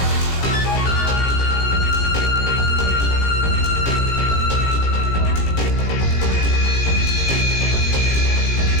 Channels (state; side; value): late; right; 17 ms